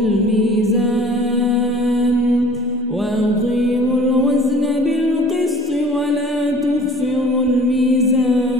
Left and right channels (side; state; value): both; normal; correlation 0.49